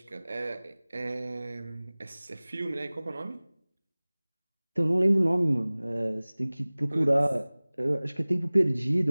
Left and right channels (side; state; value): both; inverted; correlation -0.99